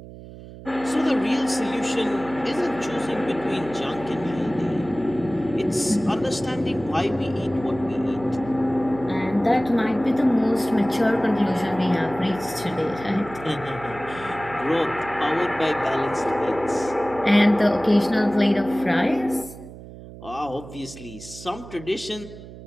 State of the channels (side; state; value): right; noise; hum, 15 dB below the sound